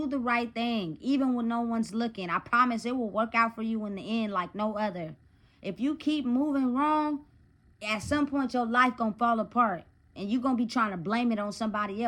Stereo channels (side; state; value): both; identical; correlation 1.00